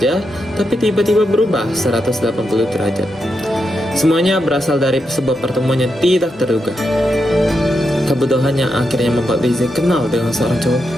tapi tiba-tiba berubah 180 derajat. Semuanya berasal dari sebuah pertemuan yang tidak terduga. Kebodohan yang akhirnya membuat Leze kenal dengan seorang cowok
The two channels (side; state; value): both; normal; correlation 0.85